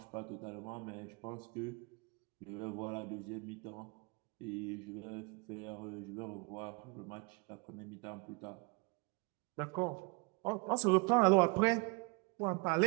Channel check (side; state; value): left; quieter; 30.4 dB